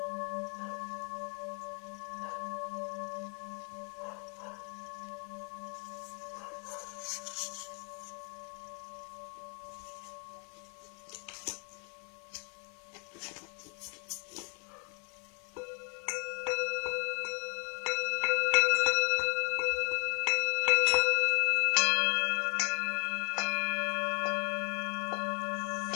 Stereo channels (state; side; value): quieter; right; 39.3 dB